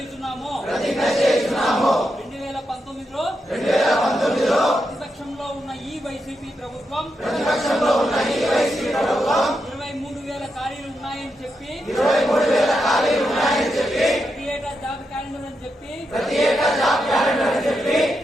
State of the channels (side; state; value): both; normal; correlation 0.85